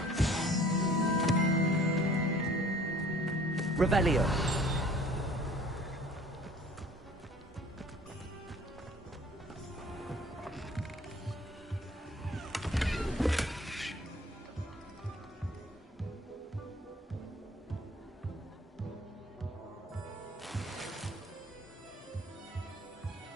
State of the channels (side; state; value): both; normal; correlation 0.52